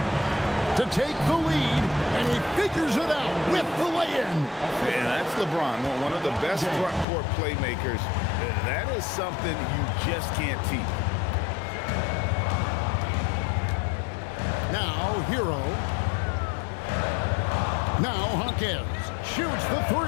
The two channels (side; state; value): right; drops out; at 7.1 s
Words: To take the lead, and he figures it out with the lay-in. And that's LeBron, one of the best front court playmakers. That is something you just can't teach. Now, Hero. Now, Hawkins shoots the 3.